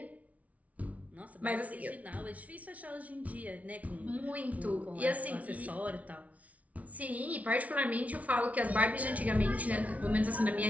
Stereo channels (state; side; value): late; left; 0.068 ms